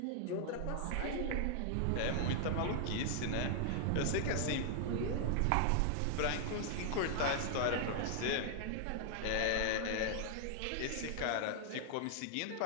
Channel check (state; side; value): different; both; correlation 0.00